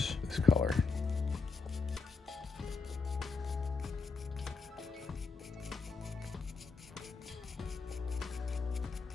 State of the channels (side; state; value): right; quieter; 4.5 dB